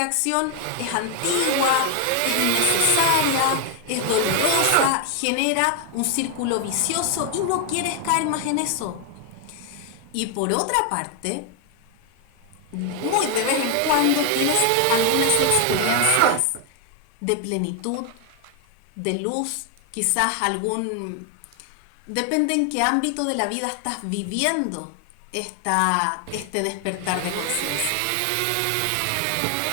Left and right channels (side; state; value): both; different; correlation 0.00